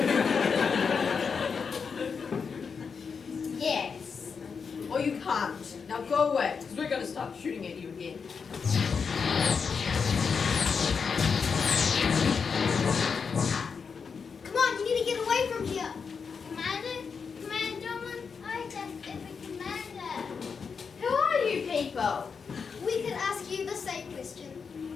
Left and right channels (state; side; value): quieter; right; 5.8 dB